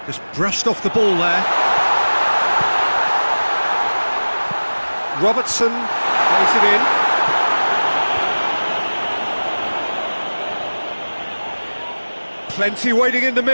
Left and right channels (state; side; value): inverted; both; correlation -1.00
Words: Just brushed off the ball there. Robertson plays it in. Plenty waiting in the